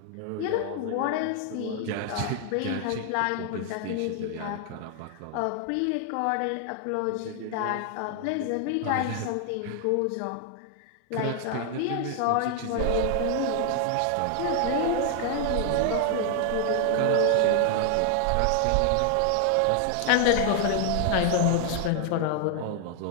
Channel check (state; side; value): different; both; correlation 0.00